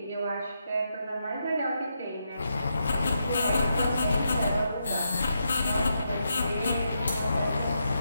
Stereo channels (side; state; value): both; inverted; correlation -0.82